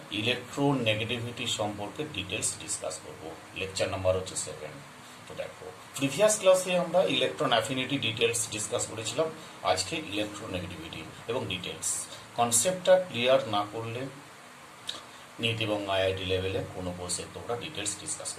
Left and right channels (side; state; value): both; identical; correlation 1.00